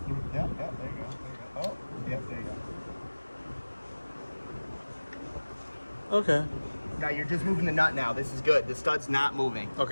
go. There you go. Oh, yeah, there you go. Okay. Now you're just moving the nut now. This is good. The stud's not moving.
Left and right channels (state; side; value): inverted; both; correlation -1.00